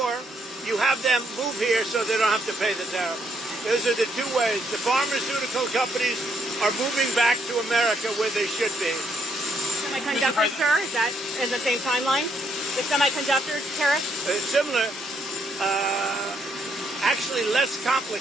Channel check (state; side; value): normal; both; correlation 0.73